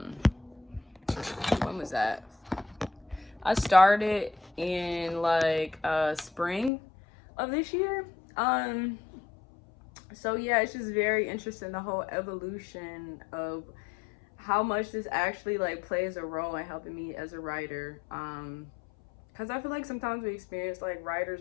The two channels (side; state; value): right; drops out; at 6.7 s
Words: was that? I started in like spring of this year. So yeah, it's just very interesting, the whole evolution of how much this actually like plays a role in helping me as a writer. Because I feel like sometimes we experience like writer's